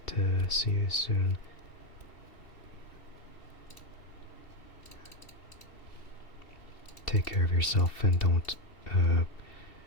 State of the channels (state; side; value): late; right; 2.7 ms